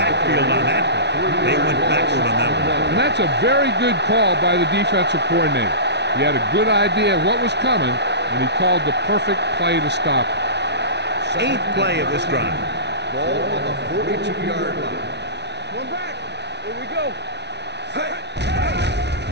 on that one. They went backward on that one. And that's a very good call by the defensive coordinator. He had a good idea of what was coming, and he called the perfect play to stop it. 8th play of this drive. Ball on the 42-yard line. One back. Here we go.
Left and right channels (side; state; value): left; late; 0.50 ms